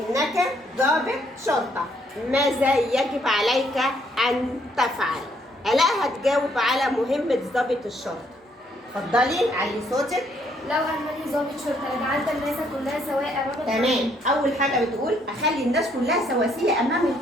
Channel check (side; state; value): both; normal; correlation 0.69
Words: ضابط شرطة ماذا يجب عليك أن تفعل؟ آلاء هتجاوب على مهمة ضابط الشرطة. اتفضلي علي صوتك. لو أنني ضابط شرطة لجعلت الناس كلها سواء أمام تمام. أول حاجة بتقول أخلي الناس كلها سواسية أمام